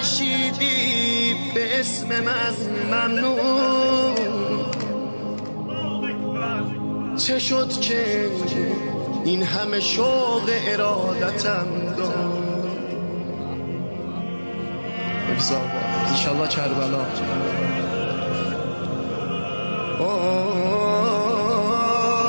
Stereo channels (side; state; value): both; inverted; correlation -1.00